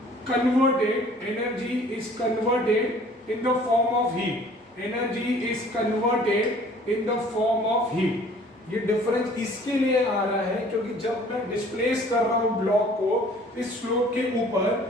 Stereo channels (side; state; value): both; normal; correlation 0.53